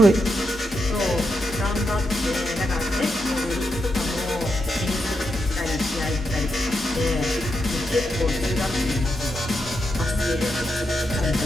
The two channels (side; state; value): both; normal; correlation 0.84